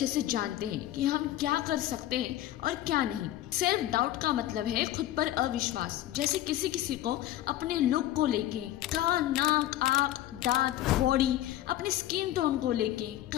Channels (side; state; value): right; quieter; 13.9 dB